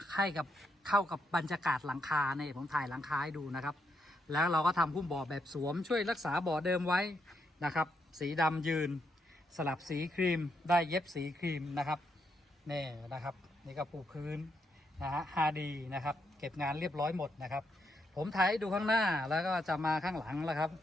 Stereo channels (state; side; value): normal; both; correlation 0.79